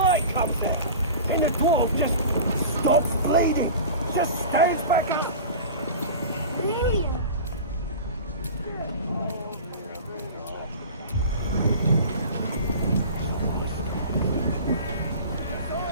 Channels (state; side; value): inverted; both; correlation -0.35